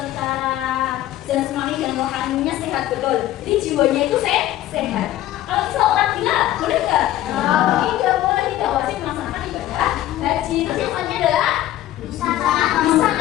jasmani dan rohaninya sehat, betul. Jadi jiwanya itu sehat. Kalau misal orang gila, boleh nggak? Tidak boleh, tidak wajib melaksanakan ibadah haji. Terus yang selanjutnya adalah bisa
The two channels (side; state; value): right; quieter; 13.9 dB